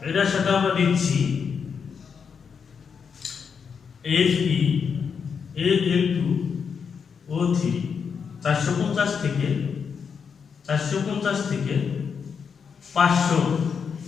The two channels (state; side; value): quieter; right; 6.4 dB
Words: এটার সাথে আমরা দিচ্ছি Fe Al2O3 450 থেকে 500